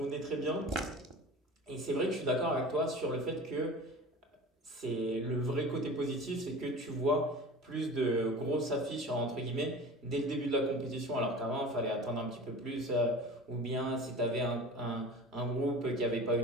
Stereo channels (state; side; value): normal; both; correlation 0.37